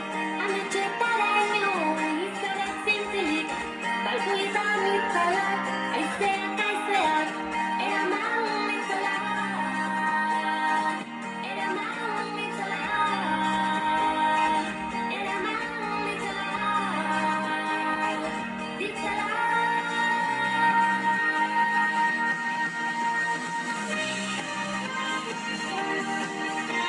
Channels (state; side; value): identical; both; correlation 1.00